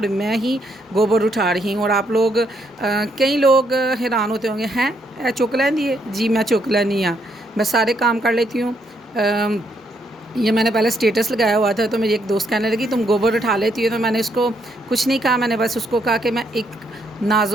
میں ہی گوبر اٹھا رہی ہوں. اور آپ لوگ کئی لوگ حیران ہوتے ہوں گے، ہیں چک لیندی ہے. جی میں چک لینی ہاں، میں سارے کام کر لیتی ہوں. یہ میں نے پہلے سٹیٹس لگایا ہوا تھا تو میری ایک دوست کہنے لگی تم گوبر اٹھا لیتی ہو. تو میں نے اس کو کچھ نہیں کہا، میں نے بس اس کو کہا کہ میں ایک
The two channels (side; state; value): both; normal; correlation 0.74